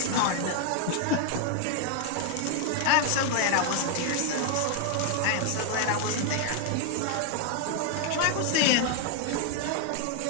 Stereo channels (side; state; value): both; different; correlation 0.00